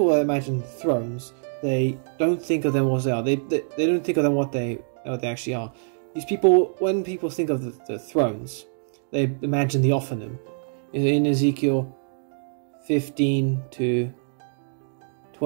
imagine thrones, they don't think of them what they are. They don't think of them what they actually are. These people, when people think of the thrones, they imagine the Ophanim. In Ezekiel 15 to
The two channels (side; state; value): left; silent; digital silence